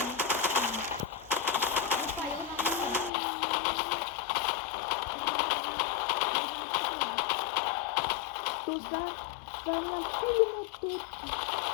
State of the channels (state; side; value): drops out; right; at 3.1 s